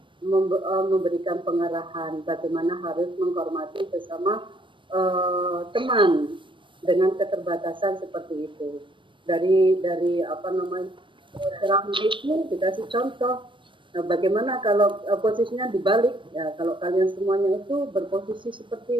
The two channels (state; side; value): late; left; 0.24 ms